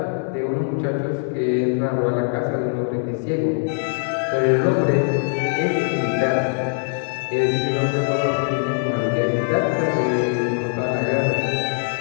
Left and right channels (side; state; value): right; silent; digital silence